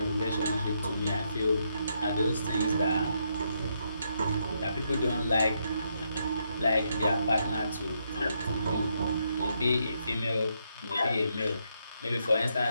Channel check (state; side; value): inverted; both; correlation -0.78